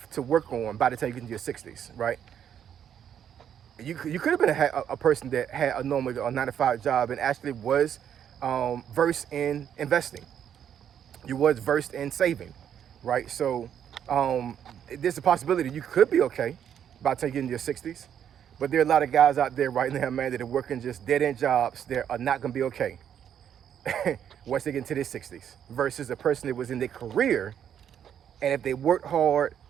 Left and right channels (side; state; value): left; quieter; 9.1 dB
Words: to work on by the time you get into your 60s, right? You could have been a person that had a normal 9-to-5 job and actually was versed in investing. You was versed in saving, right? So there's a possibility you could be okay by the time you get into your 60s. But there are a lot of guys out there right now, man, that are working just dead-end jobs that are not going to be okay once they get into their 60s, versus a person that was in their career, and if they worked hard